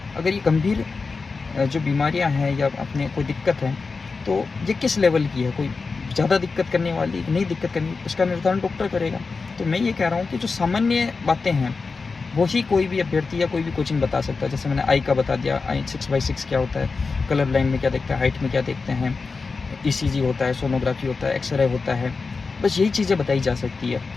अगर ये गंभीर जो बीमारियां हैं या अपने कोई दिक्कत है, तो ये किस लेवल की है, कोई ज़्यादा दिक्कत करने वाली नहीं दिक्कत करनी, उसका निर्धारण डॉक्टर करेगा। तो मैं ये कह रहा हूँ कि जो सामान्य बातें हैं वही कोई भी अभ्यर्थी या कोई भी कोचिंग बता सकता है। जैसे मैंने आई का बता दिया, आई 6/6 क्या होता है, कलर ब्लाइंड में क्या देखते हैं, हाइट में क्या देखते हैं, ईसीजी होता है, सोनोग्राफी होता है, एक्सरे होता है, बस यही चीज़ें बताई जा सकती है।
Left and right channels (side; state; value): right; quieter; 4.4 dB